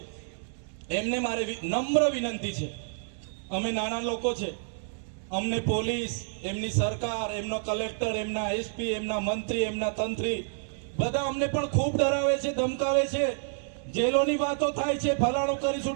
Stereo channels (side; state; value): left; silent; digital silence